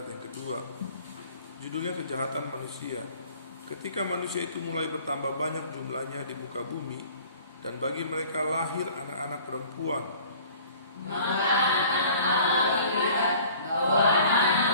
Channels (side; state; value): both; inverted; correlation -0.50